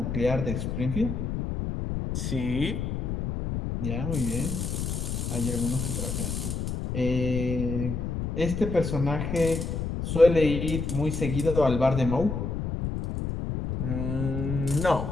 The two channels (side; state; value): left; noise; rumble, 3 dB below the sound